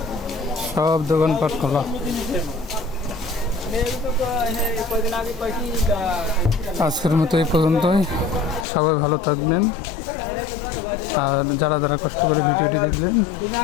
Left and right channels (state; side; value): drops out; right; at 8.7 s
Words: সব দোকানপাট খোলা। আজকের মতো এই পর্যন্তই, সবাই ভালো থাকবেন। আর যারা যারা কষ্ট করে ভিডিওটি দেখলেন